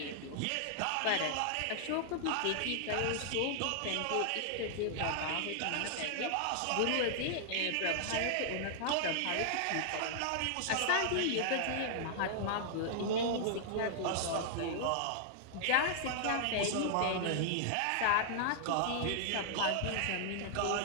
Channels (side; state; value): both; different; correlation -0.01